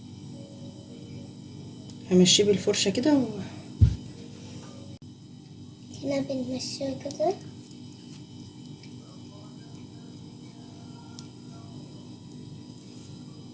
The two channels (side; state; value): both; identical; correlation 1.00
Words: همشيه بالفرشه كده هنا بنمشيها كده.